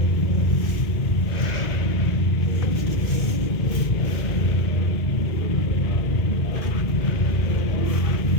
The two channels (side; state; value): right; late; 2.1 ms